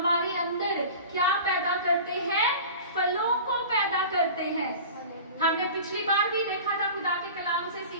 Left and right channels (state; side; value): inverted; both; correlation -0.38